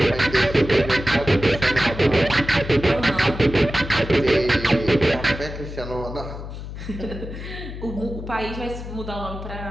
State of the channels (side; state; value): left; noise; hum, 9 dB below the sound